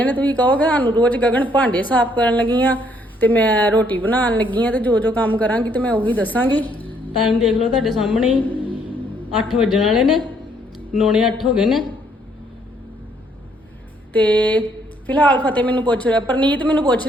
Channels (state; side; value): normal; both; correlation 0.68